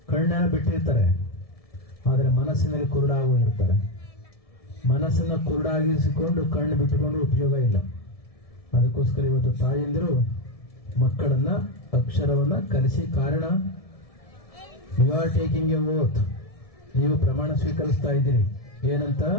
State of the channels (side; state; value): right; late; 1.7 ms